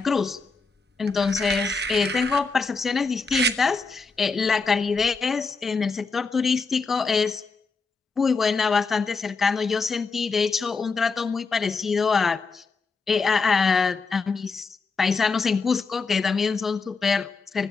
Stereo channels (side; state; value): right; quieter; 4.5 dB